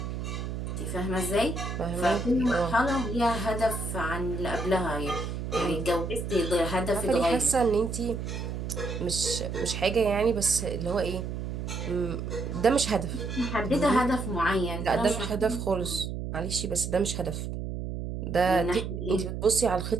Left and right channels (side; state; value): right; noise; hum, 5 dB below the sound